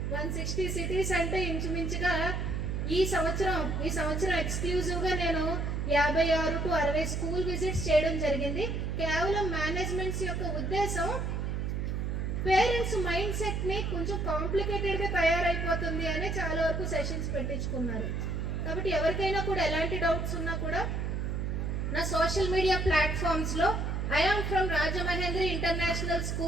160 సిటీస్ అంటే ఇంచుమించుగా ఈ సంవత్సరం ఎక్స్క్లూజివ్ గా నేను 56 to 60 స్కూల్ విజిట్స్ చేయడం జరిగింది. కేవలం మేనేజ్మెంట్స్ యొక్క ఉద్దేశం పేరెంట్స్ మైండ్ సెట్ ని కొంచెం కాంప్లికేటెడ్ గా తయారైపోతుంది అని చాలా వరకు సెషన్స్ పెట్టించుకున్నారు. కాబట్టి ఎవరికైనా కూడా ఎలాంటి డౌట్స్ ఉన్నా కూడా నా సోషల్ మీడియా ప్లాట్ఫామ్స్ లో I'm from Rajamahendri international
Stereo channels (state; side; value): noise; right; hum, 1 dB below the sound